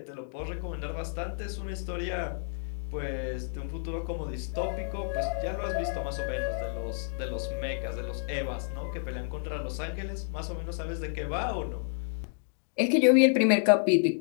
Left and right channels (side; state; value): right; silent; 58 dB below the other